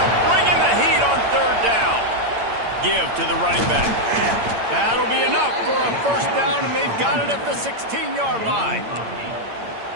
bringing the heat on 3rd down. Give to the running back. That'll be enough for a 1st down, and they've got it at the 16-yard line.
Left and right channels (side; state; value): left; late; 8.8 ms